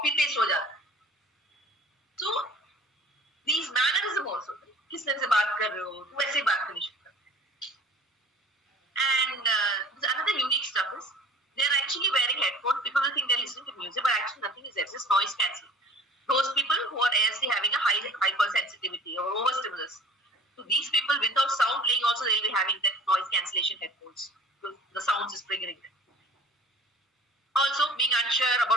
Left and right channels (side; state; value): both; normal; correlation 0.45